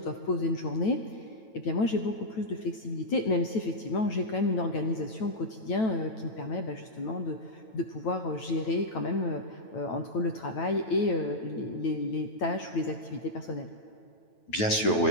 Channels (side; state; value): right; late; 9.1 ms